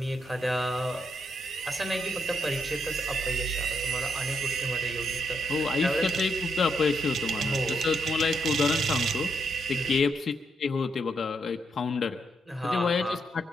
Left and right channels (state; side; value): normal; both; correlation 0.78